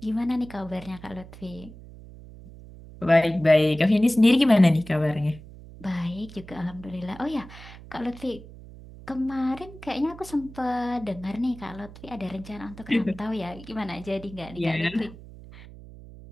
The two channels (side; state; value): right; noise; hum, 17 dB below the sound